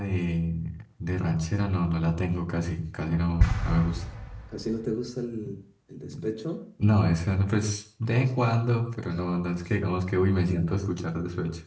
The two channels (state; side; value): identical; both; correlation 1.00